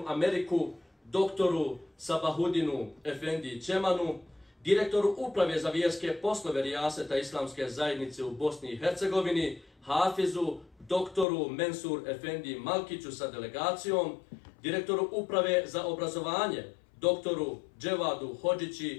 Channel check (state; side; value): drops out; right; at 11.2 s